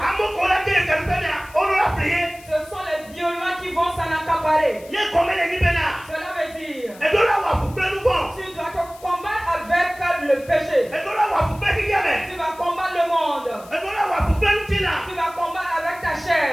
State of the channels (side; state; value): left; noise; hiss, 22 dB below the sound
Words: Ce sont les violents qui vont s'en accaparer. Cela veut dire tu dois combattre avec le péché. Tu vas combattre le monde. Tu vas combattre avec ta